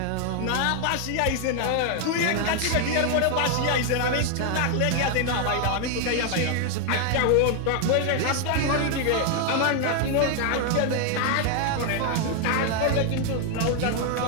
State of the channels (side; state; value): both; different; correlation 0.00